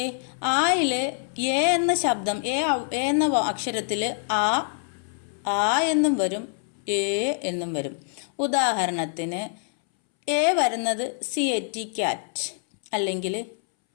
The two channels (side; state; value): right; silent; 61 dB below the other